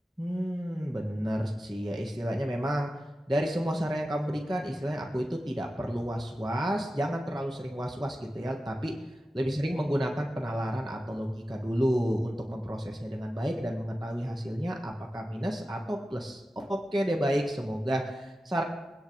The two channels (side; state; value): both; normal; correlation 0.93